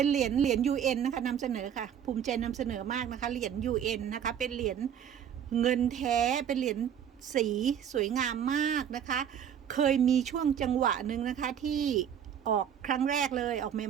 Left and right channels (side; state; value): left; quieter; 8.9 dB